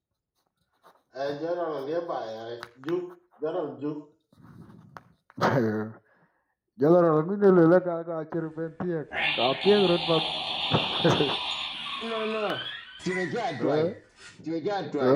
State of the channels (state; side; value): identical; both; correlation 1.00